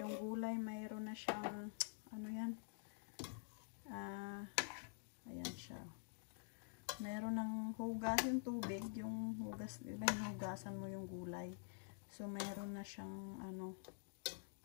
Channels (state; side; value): silent; right; digital silence